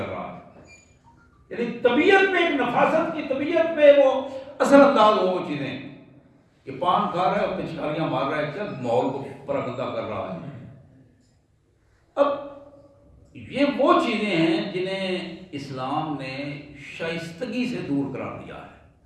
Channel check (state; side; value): identical; both; correlation 1.00